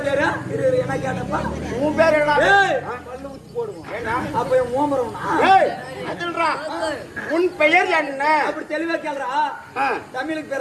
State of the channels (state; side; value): identical; both; correlation 1.00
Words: பேரு? என்ன கேட்டப்பா? உன் பேர் என்ன? பல்லு ஊத்தி போடுவோம். அப்ப ஓமரம் அதுன்றா. உன் பெயர் என்ன? அப்படி தெளிவா கேக்குறா. தமிழுக்கு